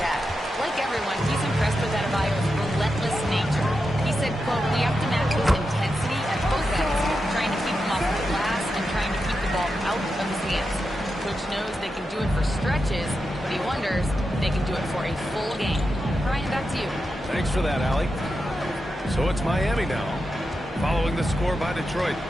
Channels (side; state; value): both; normal; correlation 0.88